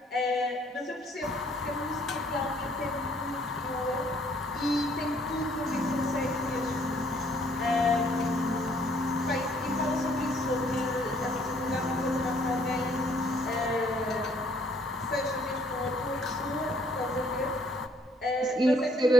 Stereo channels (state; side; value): normal; both; correlation 0.63